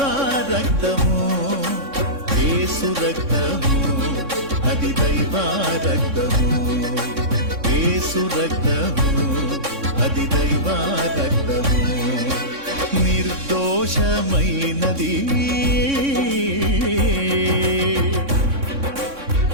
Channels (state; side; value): late; left; 3.6 ms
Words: రక్తము యేసు రక్తము అది దైవ రక్తము యేసు రక్తము అది దైవ రక్తము నిర్దోషమైనది